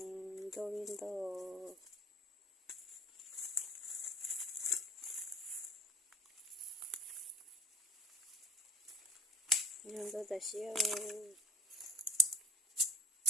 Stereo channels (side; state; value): both; normal; correlation 0.49